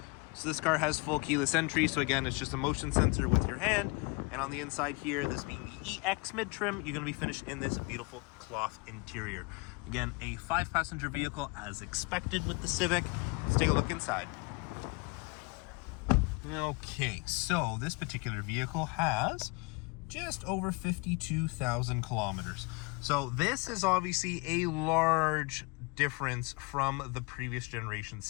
So this car has full keyless entry, so again, it's just a motion sensor with your hand. And on the inside here, this being the EX mid-trim, you're going to be finished in this beautiful cloth interior. Again, a 5-passenger vehicle as expected with the Civic. Let's take a look inside. Okay, so this particular vehicle has just over 52,000 kilometers. So this is obviously a large difference from the previous generation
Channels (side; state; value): right; quieter; 28.6 dB